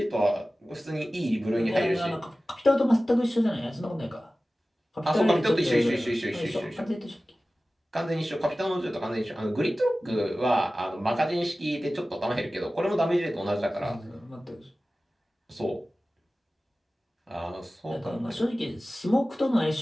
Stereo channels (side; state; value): both; normal; correlation 0.96